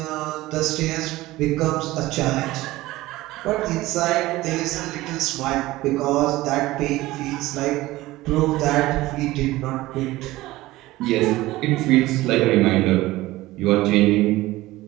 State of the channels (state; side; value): quieter; left; 17.9 dB